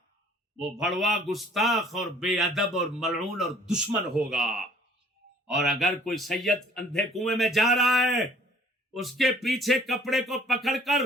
وہ بھڑوا، گستاخ اور بے ادب اور ملعون اور دشمن ہوگا۔ اور اگر کوئی سید اندھے کنویں میں جا رہا ہے، اس کے پیچھے کپڑے کو پکڑ کر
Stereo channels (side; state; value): both; normal; correlation 0.55